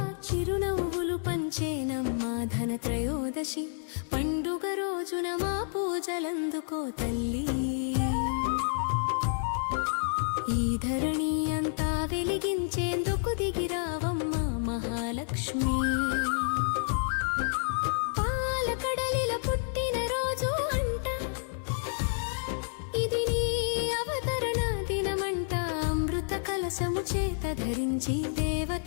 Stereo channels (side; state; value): right; silent; 58 dB below the other